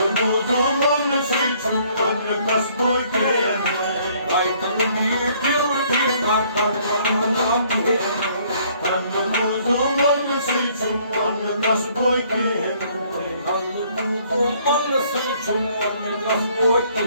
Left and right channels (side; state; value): both; inverted; correlation -0.62